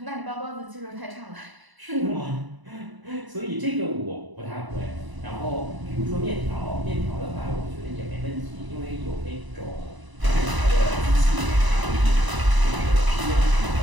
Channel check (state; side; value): late; left; 1.0 ms